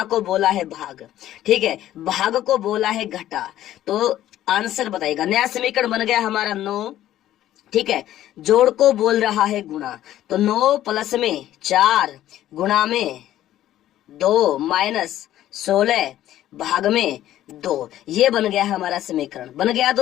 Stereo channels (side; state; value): right; quieter; 13.0 dB